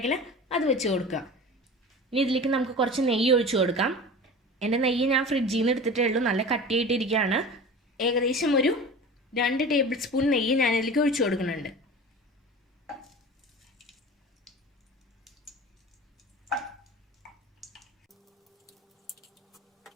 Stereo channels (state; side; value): normal; both; correlation 0.36